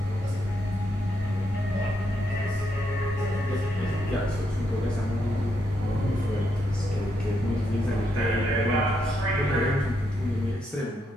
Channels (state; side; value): normal; both; correlation 0.79